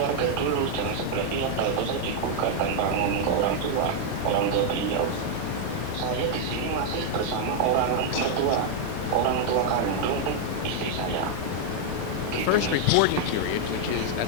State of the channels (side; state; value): both; different; correlation 0.00